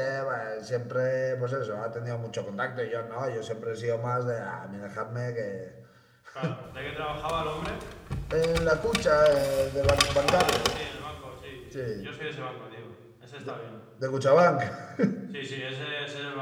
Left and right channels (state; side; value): identical; both; correlation 1.00